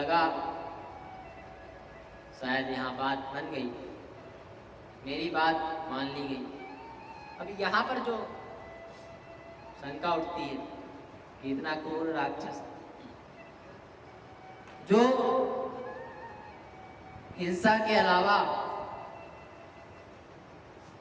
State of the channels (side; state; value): both; identical; correlation 1.00